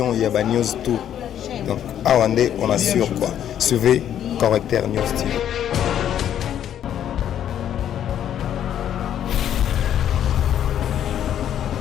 il y a news tout. Donc, Awande, on assure quoi. Suivez Correcteur News TV.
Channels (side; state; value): right; quieter; 10.2 dB